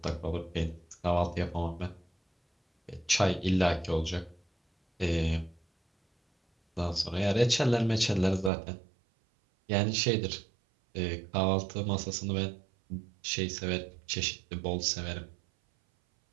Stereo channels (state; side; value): drops out; left; at 8.5 s